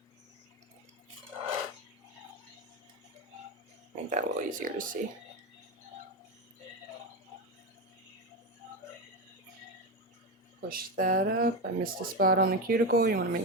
Make that a little easier to see. Push that up. I missed a spot on the cuticle. You want to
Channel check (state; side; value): normal; both; correlation 0.15